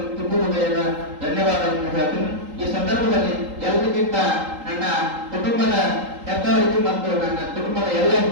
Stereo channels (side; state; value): left; late; 3.8 ms